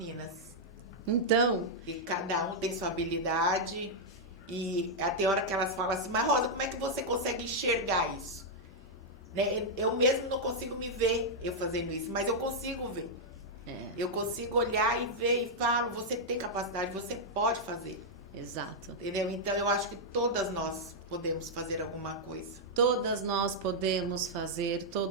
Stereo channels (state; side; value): normal; both; correlation -0.05